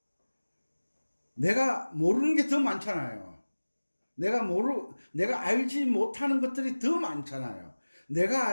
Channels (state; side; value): inverted; both; correlation -1.00